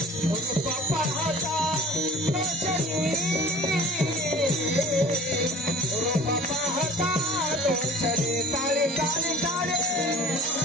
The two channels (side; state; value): both; normal; correlation 0.45